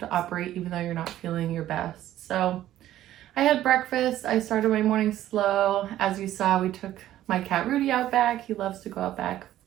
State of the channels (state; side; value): quieter; left; 13.2 dB